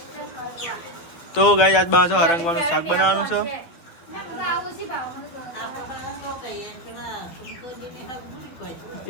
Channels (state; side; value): late; right; 12 ms